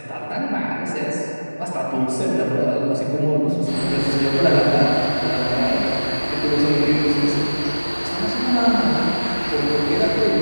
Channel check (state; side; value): inverted; both; correlation -1.00